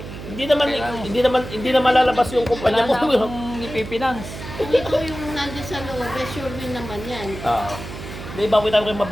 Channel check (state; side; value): noise; right; hum, 11 dB below the sound